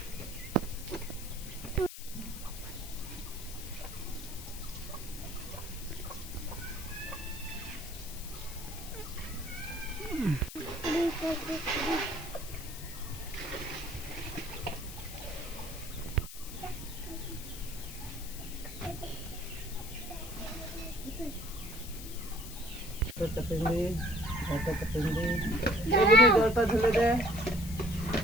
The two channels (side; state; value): left; noise; hiss, 12 dB below the sound